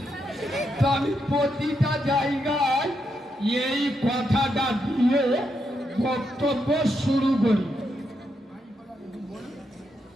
তো আমি প্রতিটা জায়গায় এই কথাটা দিয়ে বক্তব্য শুরু করি।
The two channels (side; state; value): both; normal; correlation 0.81